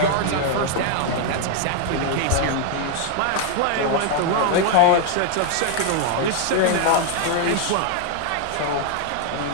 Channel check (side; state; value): both; different; correlation 0.00